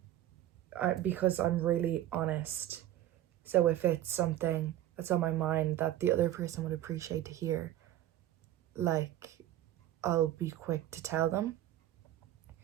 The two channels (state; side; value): quieter; left; 13.2 dB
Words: because I'm really honest. So if it's something that's on my mind that the other person would appreciate to hear, like, I'll be quick to tell them,